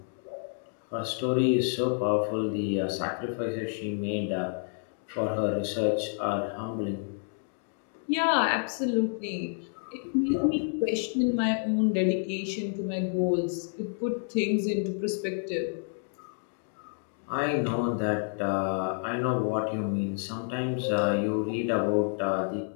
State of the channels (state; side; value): silent; right; 58 dB below the other